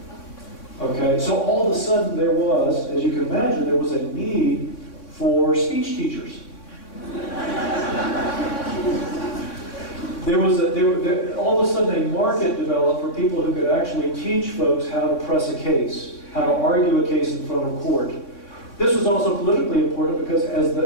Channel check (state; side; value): late; right; 3.6 ms